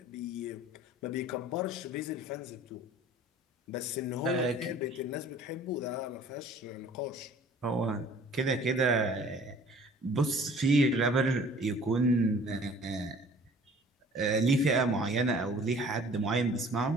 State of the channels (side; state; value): both; normal; correlation 0.50